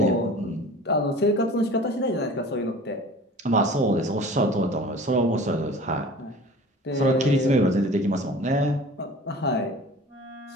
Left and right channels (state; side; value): normal; both; correlation 0.42